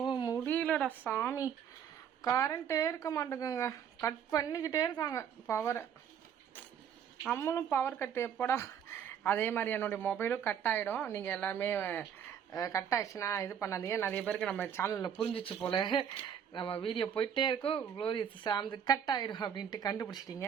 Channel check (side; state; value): left; quieter; 8.4 dB